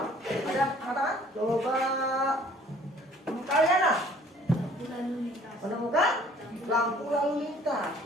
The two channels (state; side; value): normal; both; correlation 0.55